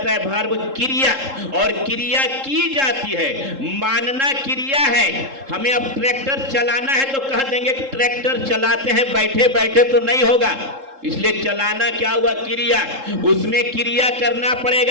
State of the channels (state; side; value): late; left; 3.7 ms